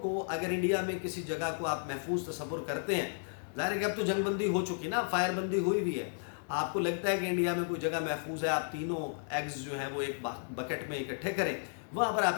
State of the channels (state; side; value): silent; right; digital silence